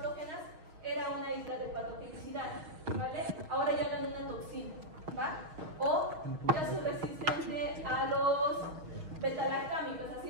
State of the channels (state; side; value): late; left; 6.4 ms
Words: era una isla de patogenicidad, ¿vale? Ahora ya gané una toxina, ¿va? O ya soy resistente a los betalactámicos, así